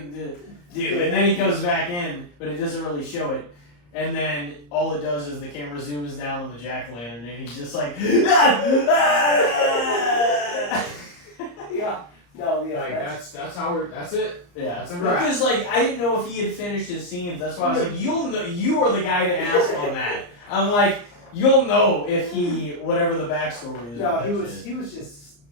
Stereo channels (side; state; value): right; late; 34 ms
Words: to do," and then he goes back in, but it doesn't really show it. And then all it does is the camera zooms down on the jack-o'-lantern, and he's just like, yeah, no, yeah, Like that's it. yeah. That's a wrap. Because like I didn't know if he had finished his scenes. That's why I was like, you'll know. You are the guy to ask on that. I'm like, you'll know if he whatever the backstory is. no, with he that was shit. he was just